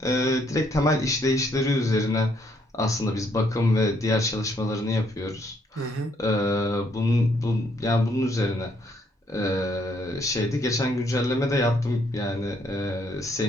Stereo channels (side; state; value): both; normal; correlation 0.70